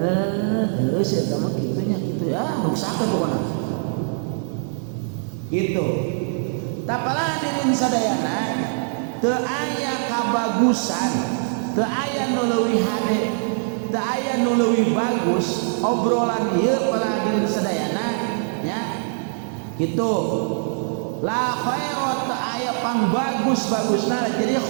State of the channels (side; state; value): left; silent; digital silence